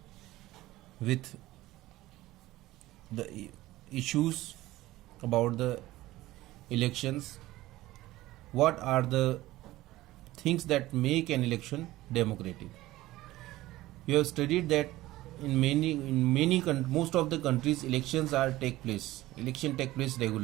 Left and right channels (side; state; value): left; quieter; 16.9 dB